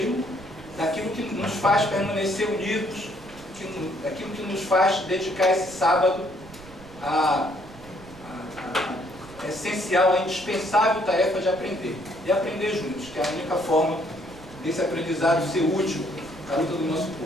daquilo que nos faz permanecer unidos, daquilo que nos faz dedicar esse sábado à essencial, à indispensável tarefa de aprender. E aprender juntos, que é a única forma desse aprendizado ser útil à luta do nosso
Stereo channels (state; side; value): noise; right; rumble, 19 dB below the sound